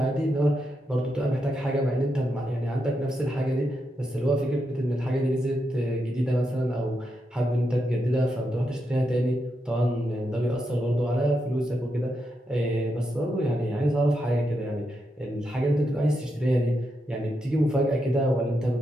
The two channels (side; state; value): both; normal; correlation 0.84